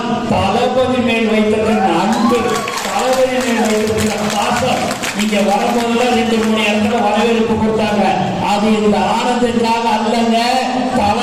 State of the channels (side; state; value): both; identical; correlation 1.00